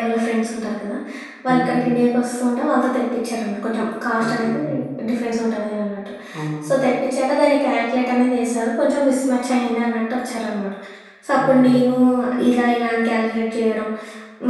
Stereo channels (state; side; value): identical; both; correlation 1.00